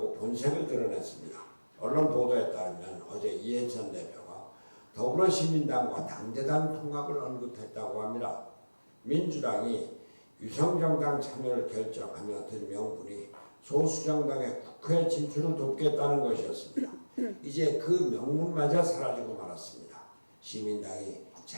본색을 드러냈습니다. 언론 보도에 따르면 어제 이해찬 대표가 더불어시민당과 당대당 통합을 언급했다고 합니다. 민주당이 유성정당 참여를 결정하며 든 명분이 소수정당의 국회 진출을 돕겠다는 것이었습니다. 이제 그 명분마저 사라지고 말았습니다. 시민당이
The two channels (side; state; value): both; inverted; correlation -1.00